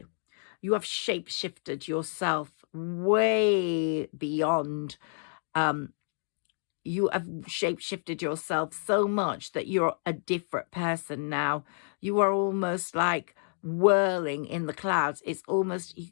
You have shape-shifted yourself way beyond. You have shape-shifted yourself so much that you're a different person now. You are almost like whirling in the clouds. It's almost,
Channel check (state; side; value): silent; right; digital silence